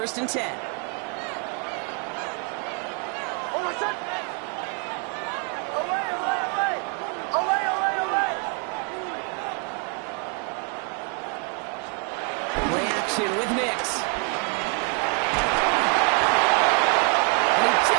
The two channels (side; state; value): left; quieter; 39.5 dB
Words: and 10. Away. action with Nix. And he